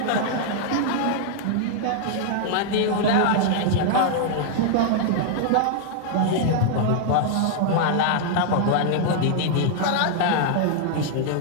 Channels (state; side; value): different; both; correlation -0.01